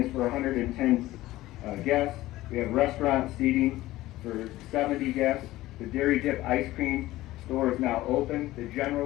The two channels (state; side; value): quieter; right; 16.7 dB